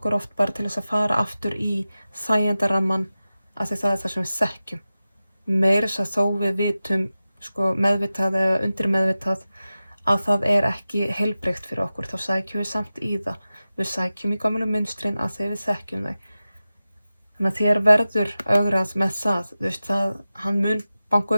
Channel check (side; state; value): both; inverted; correlation -0.95